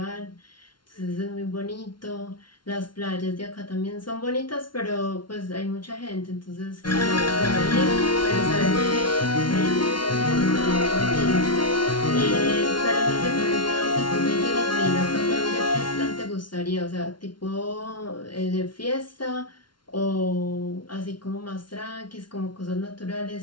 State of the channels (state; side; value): late; right; 0.72 ms